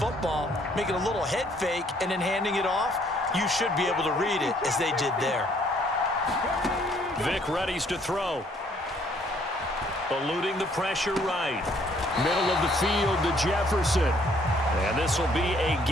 making a little head fake, and then handing it off. You should be able to read it as they did there. Vick readies to throw. Eluding the pressure right. Middle of the field to Jefferson. And this will be a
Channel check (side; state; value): both; normal; correlation 0.64